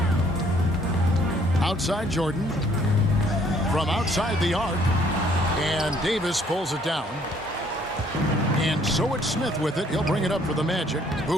Outside Jordan. From outside the arc. And Davis pulls it down. And so it's Smith with it. He'll bring it up for the Magic.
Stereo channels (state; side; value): normal; both; correlation 0.62